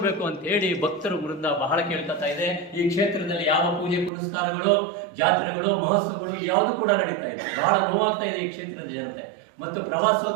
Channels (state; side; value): drops out; left; at 4.1 s